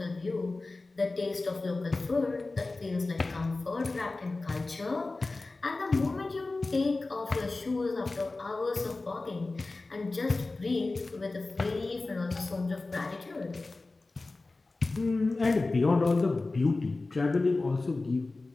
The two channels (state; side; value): quieter; right; 3.4 dB